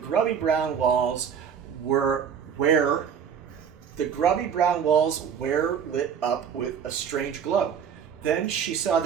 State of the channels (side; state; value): left; quieter; 7.7 dB